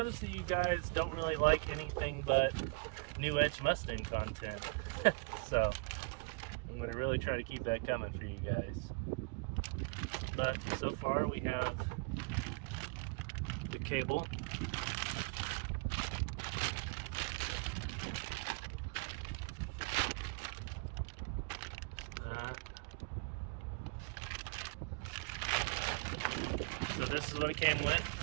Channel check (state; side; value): quieter; left; 31.3 dB